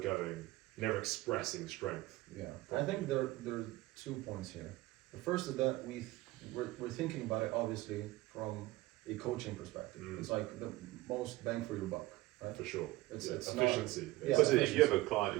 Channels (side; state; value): left; quieter; 18.5 dB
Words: never expressing strength. Yeah, I think there are 2 points here. The first is that we're thinking about it obviously from a coaching perspective. It's like the most bang for your buck, right? For sure. It's efficiency. If you have a client